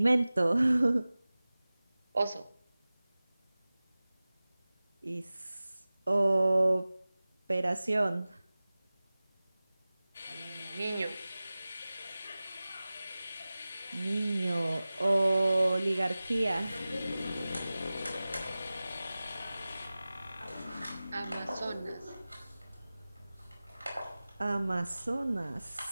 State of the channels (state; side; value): inverted; both; correlation -0.97